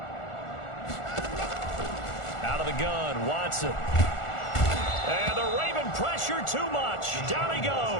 Out of the gun, Watson. And the Raven pressure too much. Down he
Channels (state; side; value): late; right; 1.4 ms